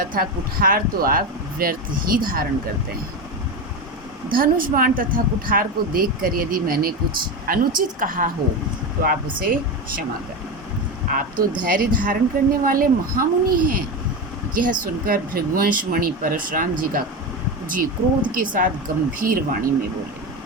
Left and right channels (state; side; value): normal; both; correlation 0.18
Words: कुठार तो आप व्यर्थ ही धारण करते हैं। धनुष बाण तथा कुठार को देखकर यदि मैंने कुछ अनुचित कहा हो तो आप उसे क्षमा करें। आप तो धैर्य धारण करने वाले महामुनि हैं। यह सुनकर भृगुवंश मणि परशुराम जी क्रोध के साथ गंभीर वाणी में बोले।